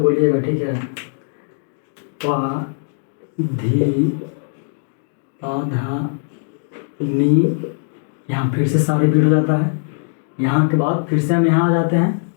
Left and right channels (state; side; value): silent; right; digital silence